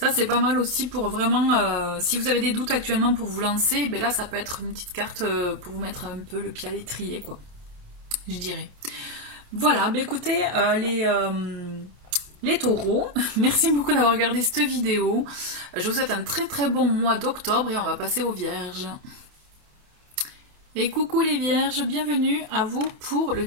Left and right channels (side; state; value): left; late; 28 ms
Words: c'est pas mal aussi pour vraiment, si vous avez des doutes actuellement pour vous lancer, là ça peut être une petite carte pour vous mettre un peu le pied à l'étrier, quoi, je dirais. Voilà, écoutez, les taureaux, merci beaucoup d'avoir regardé cette vidéo. Je vous souhaite un très très bon mois d'octobre et on va passer aux vierges. Et coucou les vierges, bienvenue à vous pour le